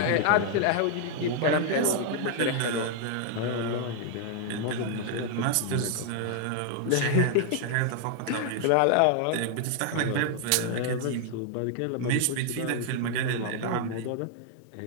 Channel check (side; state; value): both; different; correlation 0.00